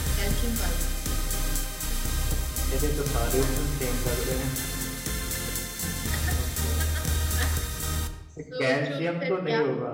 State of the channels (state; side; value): identical; both; correlation 1.00